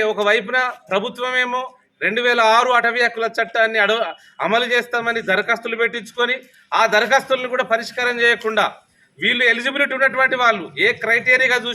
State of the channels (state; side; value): identical; both; correlation 1.00